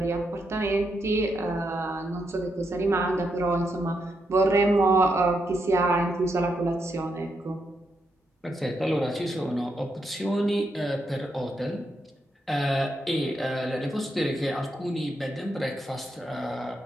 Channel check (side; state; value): both; normal; correlation 0.81